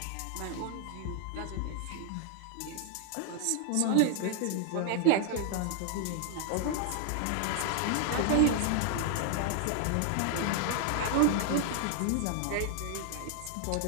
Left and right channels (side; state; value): both; different; correlation 0.00